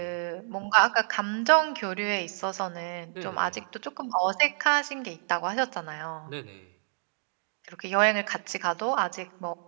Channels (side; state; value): left; silent; digital silence